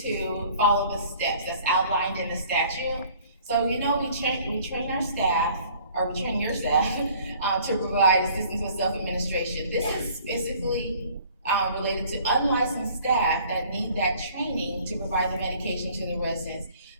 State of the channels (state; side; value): inverted; both; correlation -0.53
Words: follow the steps that's outlined in the statute. So we train our staff or we train your staff to provide assistance with self-administration. This is specifically related to unlicensed staff that need that training to provide the medication to the residents.